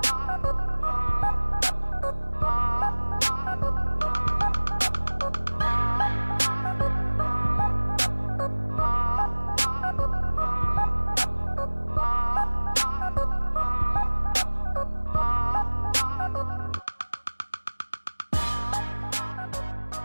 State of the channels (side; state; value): both; inverted; correlation -1.00